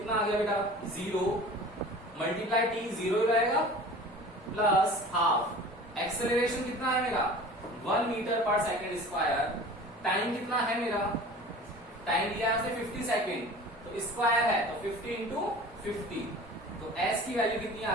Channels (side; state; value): both; normal; correlation 0.41